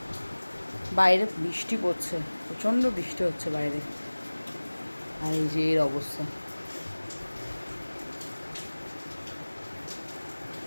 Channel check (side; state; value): both; inverted; correlation -1.00